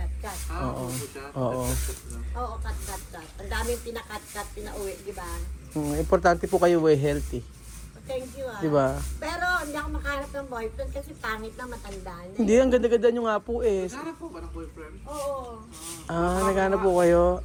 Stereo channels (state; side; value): identical; both; correlation 1.00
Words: Oo. Oo, cut. Ang daming pinakat, pinauwi, di ba? Importante po kayo healthy. Thank you, ah. Di ba? Pero hindi ako makahanap ng boyfriend kasi pangit na, matanda na. Hindi, ang ganda-ganda nyo nga po Sana po ba ng boyfriend? Oo. Naghanap po kayo.